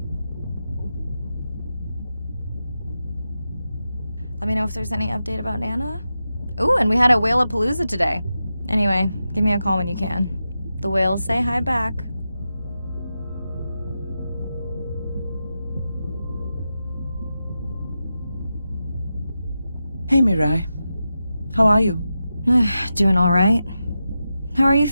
Let me know if there's any update about Nana. Ooh, and we had a whale-apalooza today. Anyway, give me a call when you can. The whales say hi back. Hey, Mirai. How are you? Doing all right. How are you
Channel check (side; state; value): both; inverted; correlation -0.90